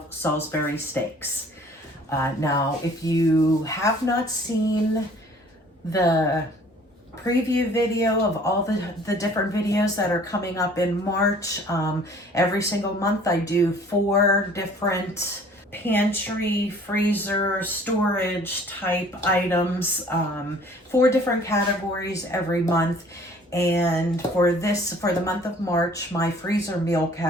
Salisbury steaks. Now, if you have not seen the preview video of all the different videos that are coming up in March, every single month I do 4 different pantry, freezer, storage type items, 4 different categories every month. And for the month of March, my freezer meal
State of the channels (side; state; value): both; normal; correlation 0.53